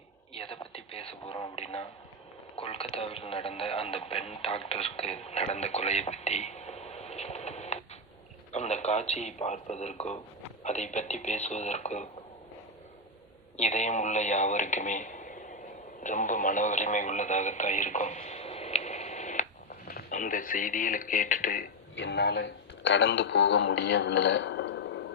எதை பற்றி பேச போகிறோம் அப்படின்னா, கொல்கத்தாவில் நடந்த அந்த பெண் டாக்டருக்கு நடந்த கொலையை பற்றி. அந்த காட்சியை பார்ப்பதற்கோ அதை பற்றி பேசுவதற்கோ இதயம் உள்ள யாவருக்குமே ரொம்ப மன வலிமை உள்ளதாகத்தான் இருக்கும். அந்த செய்திகளை கேட்டுட்டு என்னால் கடந்து போக முடியவில்லை.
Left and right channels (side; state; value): both; normal; correlation 0.05